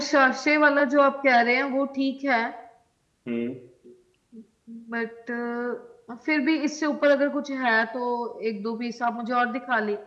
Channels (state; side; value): identical; both; correlation 1.00